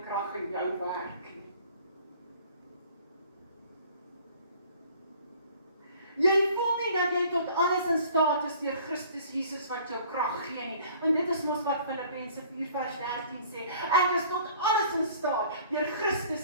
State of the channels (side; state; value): both; inverted; correlation -0.52